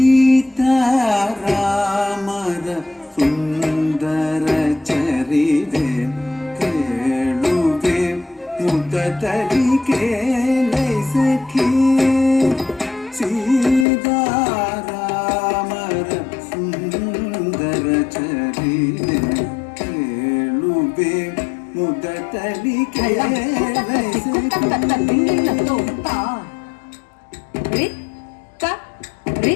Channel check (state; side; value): drops out; right; at 13.9 s